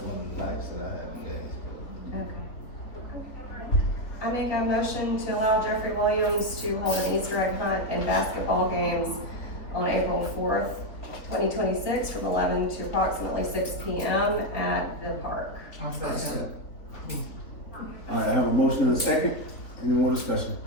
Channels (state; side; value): late; right; 3.8 ms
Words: one of the nights that I had in Gainesville. Okay. I mean, make a motion to allow Jeffrey Williams to hold an Easter egg hunt and basketball games on April 4th, 2026, from 11 to approximately 6 p.m. at the park. I'll second. All right, I have a motion and a second. Any more discussion?